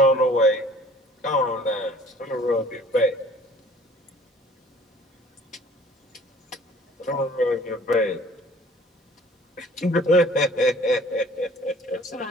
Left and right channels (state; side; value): normal; both; correlation 0.52